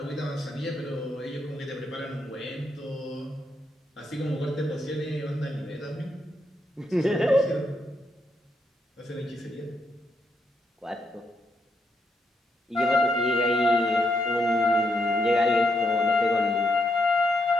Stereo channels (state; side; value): normal; both; correlation 0.79